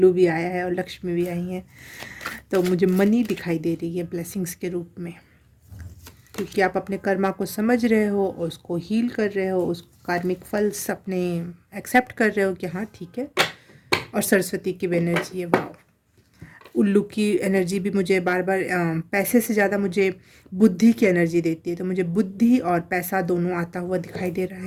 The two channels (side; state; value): both; identical; correlation 1.00